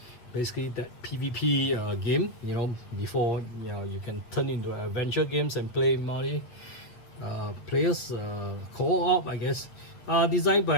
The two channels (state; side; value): late; right; 8.7 ms